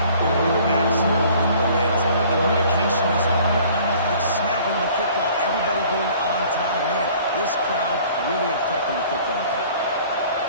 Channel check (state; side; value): inverted; both; correlation -0.53